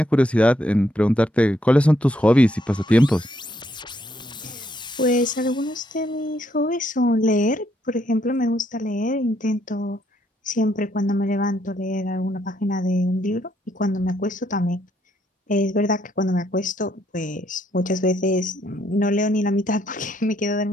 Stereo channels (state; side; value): normal; both; correlation 0.73